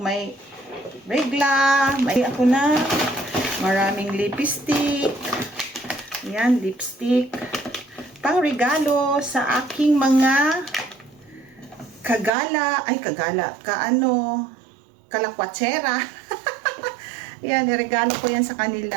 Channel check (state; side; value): drops out; left; at 12.3 s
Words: regla, may ako na maraming lipstick. Yan, lipstick. Pang regalo sa aking mga kalakwatsera. Yan, niregalo ko yan sa